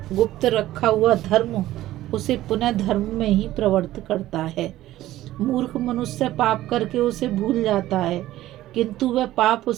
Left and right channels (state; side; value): quieter; left; 14.9 dB